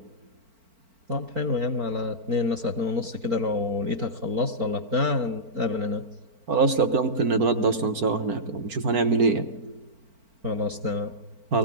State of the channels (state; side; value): late; left; 4.4 ms